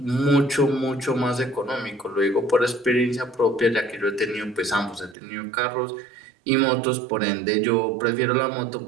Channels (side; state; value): left; drops out; at 5.2 s